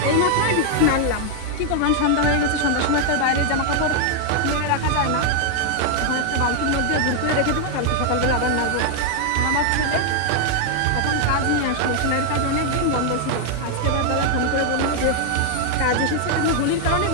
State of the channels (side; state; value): both; different; correlation 0.00